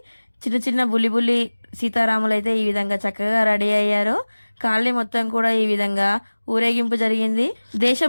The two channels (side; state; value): both; inverted; correlation -1.00